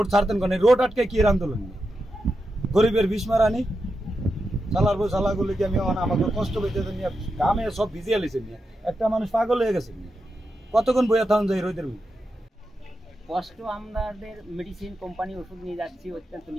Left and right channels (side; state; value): both; normal; correlation 0.88